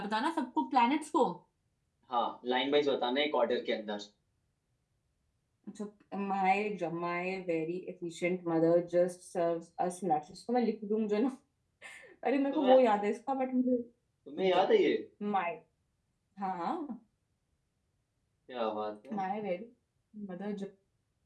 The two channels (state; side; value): identical; both; correlation 1.00